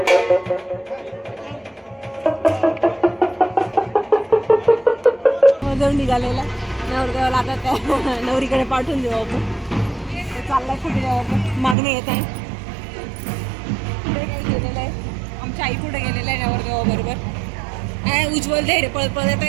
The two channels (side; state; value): left; drops out; at 11.8 s